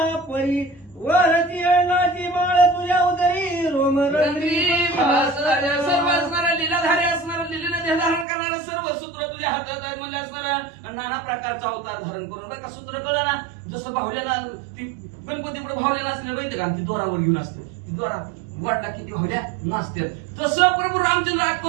परी वरती अण्णाची माळ तुझ्या उदरी रोम रंगरी सर्व असणारा लीलाधारी असणारा लीलेने देह धारण करणारा सर्व सूत्र तुझ्या हातात आहे म्हणजे असणारा नाना प्रकारचा अवतार धारण करून बरं का सूत्र कळलं ना जसं भावल्याला ती गणपतीपुढे भावल्या नसले माहिती का ती दोरावर घेऊन असते ती दोरा वाटला किती भावल्या नाचतात तसं प्रभू रामचंद्र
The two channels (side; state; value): left; drops out; at 8.2 s